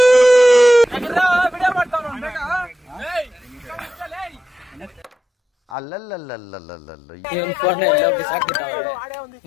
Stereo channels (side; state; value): right; drops out; at 5.8 s